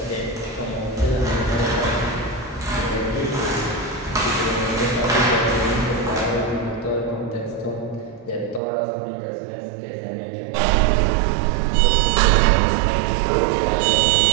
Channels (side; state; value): left; drops out; at 8.6 s